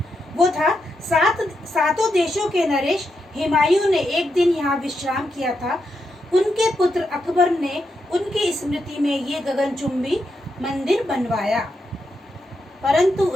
वो था, सातों देशों के नरेश हुमायूं ने एक दिन यहाँ विश्राम किया था। उनके पुत्र अकबर ने उनकी स्मृति में ये गगनचुंबी मंदिर बनवाया, परंतु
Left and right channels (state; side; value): normal; both; correlation 0.84